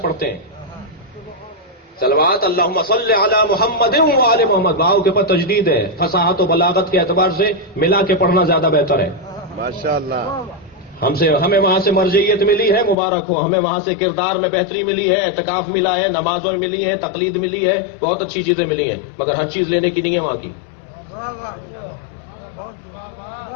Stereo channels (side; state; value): right; drops out; at 13.0 s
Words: ہیں۔ صلوات اللہم صلی علی محمد و آل محمد، واو کے اوپر تجدید ہے، فصاحت و بلاغت کے اعتبار سے ملا کے پڑھنا زیادہ بہتر ہے۔ ماشاء اللہ، ہمیں وہاں سے مرجعیت ملی ہے، مبارک ہو۔ ہمیں وہاں سے کردار میں بہتری ملی ہے، اعتکاف ملا ہے، نمازوں میں ملی ہے، تقلید ملی ہے، بہت اچھی چیزیں ملی ہیں، مگر ہر چیز لینے کی نہیں ہے وہاں کی۔